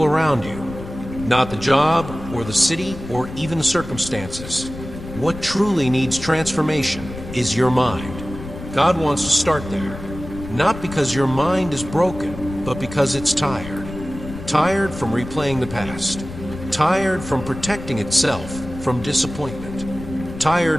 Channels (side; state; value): left; noise; rumble, 12 dB below the sound